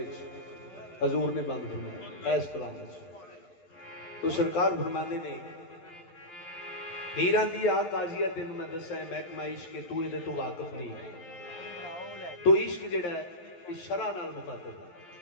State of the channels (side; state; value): right; late; 11 ms